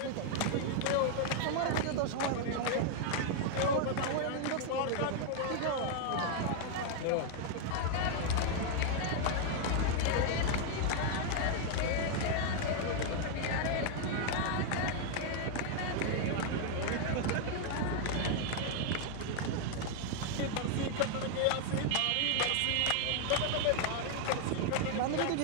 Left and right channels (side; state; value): both; different; correlation 0.00